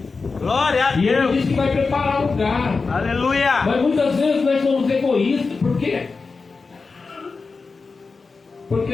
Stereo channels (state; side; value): quieter; right; 4.4 dB